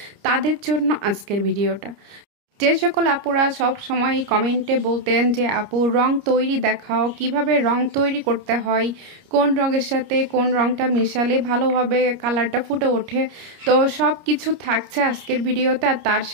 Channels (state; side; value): late; left; 29 ms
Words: তাদের জন্য আজকের ভিডিওটা। যে সকল আপুরা সব সময় কমেন্টে বলতেন যে আপু রং তৈরি দেখাও, কিভাবে রং তৈরি করতে হয়, কোন রঙের সাথে কোন রংটা মিশালে ভালোভাবে কালারটা ফুটে ওঠে, তো সব কিছু থাকছে আজকের ভিডিওতে। আর তার